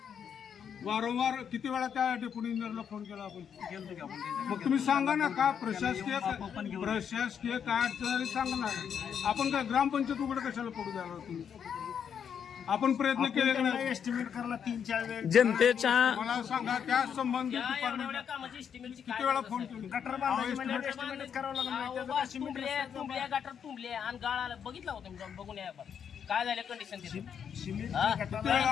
वारंवार किती वेळा त्या डेप्युटी इंजिनियरला फोन केला आपण? मग तुम्ही सांगा ना का प्रशासकीय काय अडचण आली सांगा ना. आपण काय ग्रामपंचायत उघड कशाला पडू द्यायला तुम्ही? आपण प्रयत्न केले का नाही? एस्टिमेट करायला 3-4 वेळ जनतेच्या मला सांगा त्या संबंधित एवढ्या डिपार्टमेंट कामाची एस्टिमेटची किती वेळा फोन केले? गटर बांधायची एस्टिमेट करावं लागणार. तुंबले गटर तुंबले आणि गाळ आला. बघितला होता मी जाऊन बघून या आपण. काय झालं कंडिशन तिथे?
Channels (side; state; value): right; quieter; 7.8 dB